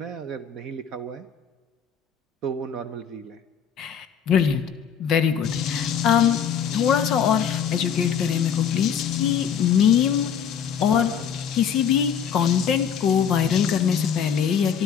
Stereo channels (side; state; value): right; quieter; 7.7 dB